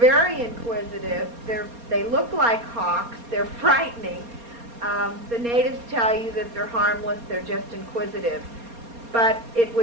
inquisitive. They look like hawks. They're frightening. The natives tell you that they're harmless. They're just inquisitive. But it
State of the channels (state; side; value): late; left; 4.3 ms